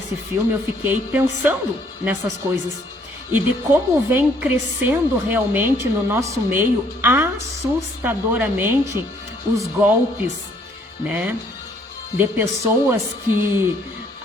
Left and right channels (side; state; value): both; normal; correlation 0.65